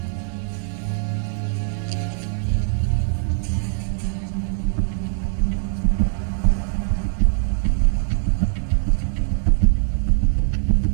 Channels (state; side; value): silent; left; 60 dB below the other